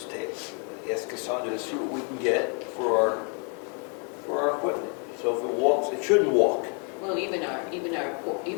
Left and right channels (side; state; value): right; quieter; 38.2 dB